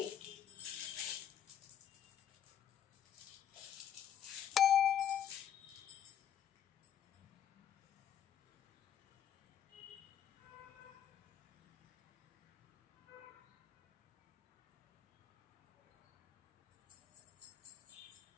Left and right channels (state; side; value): quieter; right; 9.7 dB